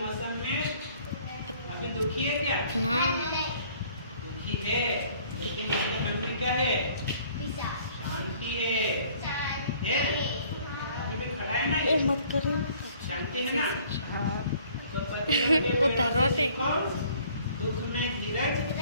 में अभी दुखी है क्या? हाँ। दुखी है, लेकिन इसके मन में क्या है? शांति है। अभी भी खड़ा है ना ये? मत करो। शांति है ना? तो पतझड़ के वो पेड़ धरोटे। से सीखो दुख में धीरज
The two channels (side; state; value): both; inverted; correlation -0.57